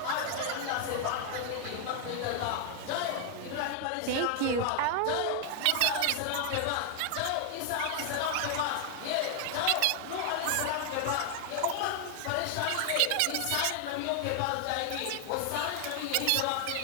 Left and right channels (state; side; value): different; both; correlation 0.00